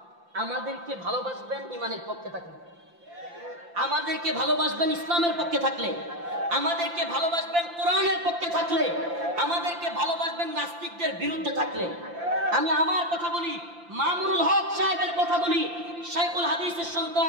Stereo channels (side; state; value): left; late; 5.8 ms